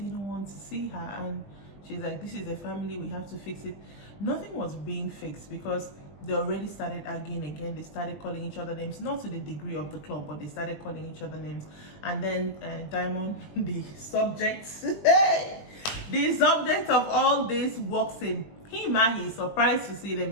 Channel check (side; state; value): right; late; 20 ms